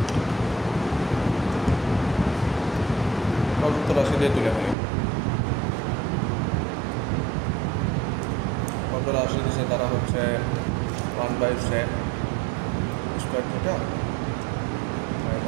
প্রদত্ত রাশি দিয়ে তুলে ফেলি। প্রদত্ত রাশি দিচ্ছে তারা হচ্ছে 1/sec square theta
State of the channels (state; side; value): drops out; left; at 4.8 s